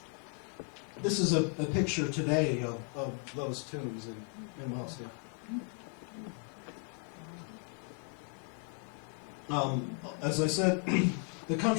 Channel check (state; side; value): quieter; right; 38.8 dB